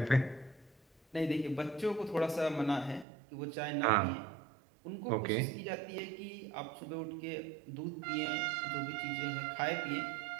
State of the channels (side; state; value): left; drops out; at 3.1 s